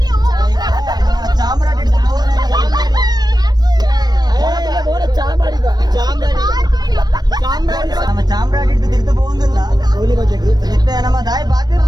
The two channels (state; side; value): late; left; 0.19 ms